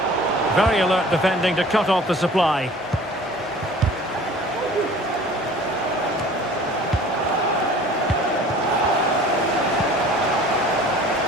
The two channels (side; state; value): both; normal; correlation 0.47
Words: Very alert defending to cut off the supply.